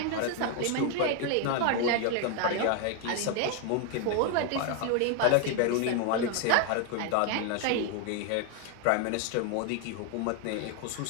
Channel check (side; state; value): both; different; correlation 0.01